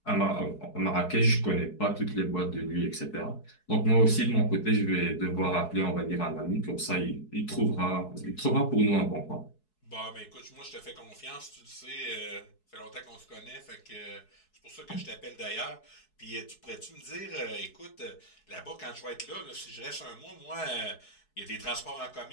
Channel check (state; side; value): late; right; 4.7 ms